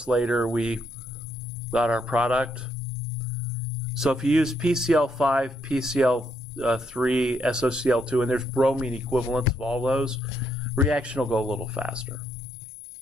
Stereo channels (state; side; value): normal; both; correlation 0.75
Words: later, we got our product. So if you use PCl5, PCl3, SOCl2, and there's bromine equivalents of all those, reaction will go a little faster.